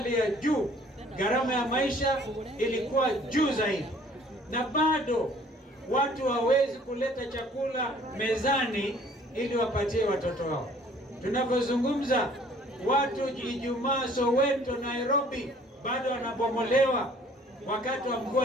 ya juu, gharama ya maisha ilikuwa juu zaidi, na bado watu hawezi kuleta chakula mezani ili wapatie watoto wao. Tunapozungumza, watu Ijumaa Soweto, Nairobi bado wanabomolewa wakati wa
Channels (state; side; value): normal; both; correlation 0.55